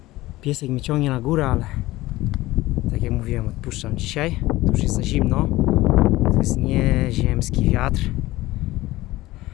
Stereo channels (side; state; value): right; quieter; 17.9 dB